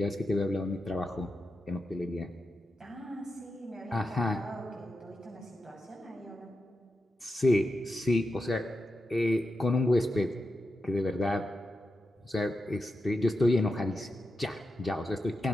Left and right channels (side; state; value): both; normal; correlation 0.89